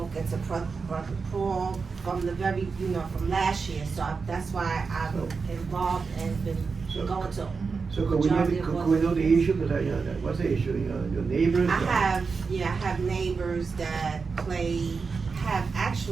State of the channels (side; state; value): left; quieter; 4.9 dB